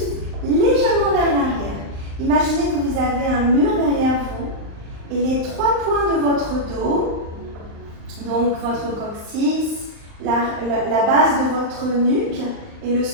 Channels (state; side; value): late; left; 39 ms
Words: légèrement vers l'arrière. Imaginez que vous avez un mur derrière vous et les 3 points de votre dos, donc votre coccyx, la base de votre nuque et